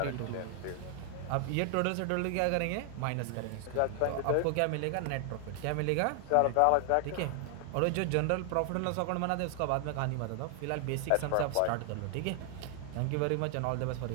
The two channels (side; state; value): both; different; correlation 0.00